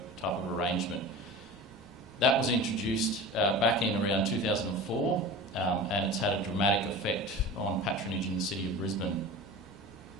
type of arrangement. That was introduced back in around 2004, and it's had a dramatic effect on patronage in the City of Brisbane.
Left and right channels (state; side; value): normal; both; correlation 0.34